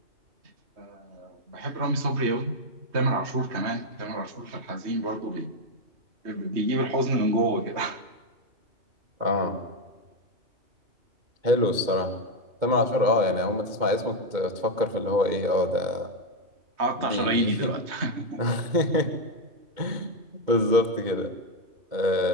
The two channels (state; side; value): late; left; 2.2 ms